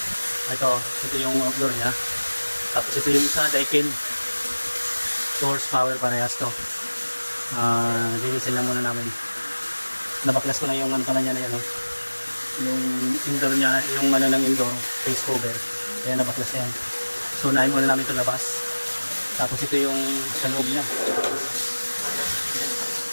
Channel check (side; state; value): both; inverted; correlation -1.00